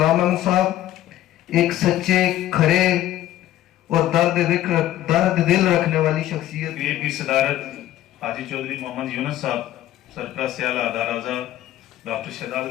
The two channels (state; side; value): quieter; right; 13.5 dB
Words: احمد صاحب ایک سچے، کھرے اور درد دل رکھنے والی شخصیت۔ کی صدارت حاجی چودھری محمد یونس صاحب، سرپرست اعلیٰ ادارہ اعضاء ڈاکٹر شہزاد